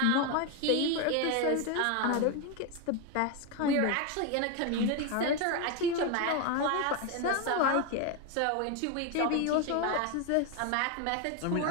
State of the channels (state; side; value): different; both; correlation 0.02